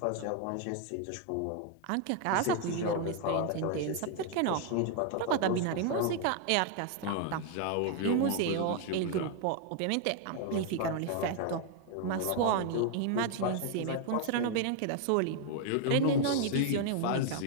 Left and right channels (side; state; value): both; different; correlation 0.00